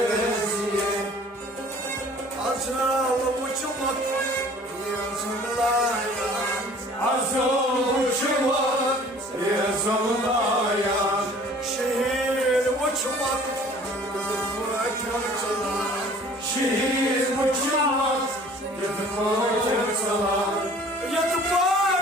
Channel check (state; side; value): normal; both; correlation 0.51